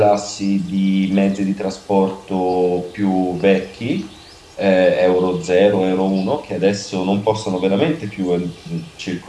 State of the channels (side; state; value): both; identical; correlation 1.00